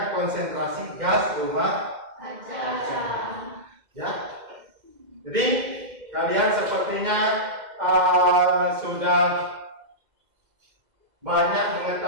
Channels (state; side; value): late; left; 2.1 ms